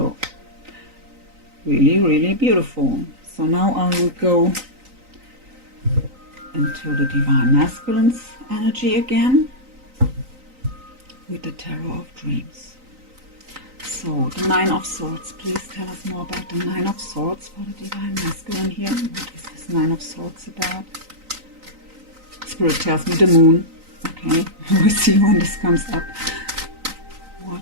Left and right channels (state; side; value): late; left; 3.9 ms